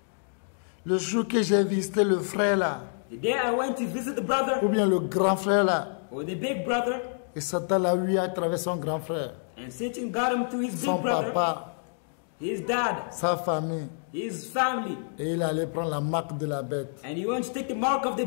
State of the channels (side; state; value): right; silent; digital silence